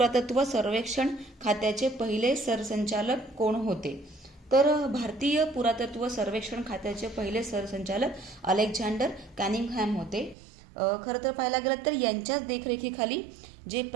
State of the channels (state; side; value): drops out; left; at 10.4 s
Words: सर्वेक्षण खात्याचे पहिले सरसंचालक कोण होते? तर भारतीय पुरातत्व सर्वेक्षण खात्याचे पहिले सरसंचालक अलेक्झांडर कॅनिंगहॅम होते. खरं तर पाहायला गेलं तर यांच्याच देखरेखीखाली जे